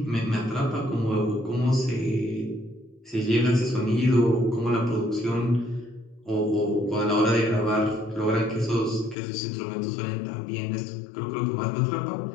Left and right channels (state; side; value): drops out; right; at 9.2 s